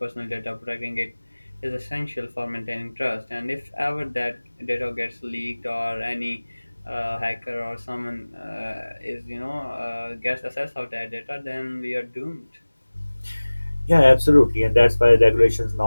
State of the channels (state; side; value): inverted; both; correlation -1.00